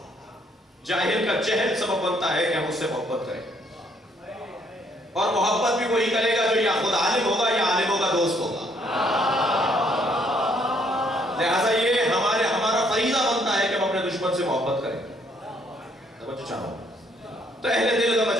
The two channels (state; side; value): normal; both; correlation 0.67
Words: جاہل کا جہل سبب بنتا ہے کہ ہم اس سے محبت کریں، اور محبت بھی وہی کرے گا جو یا خود عالم ہوگا یا عالموں کا دوست ہوگا۔ لہذا یہ ہمارا فریضہ بنتا ہے کہ ہم اپنے دشمن سے محبت کریں۔ توجہ چاہوں، تو اہل دل کا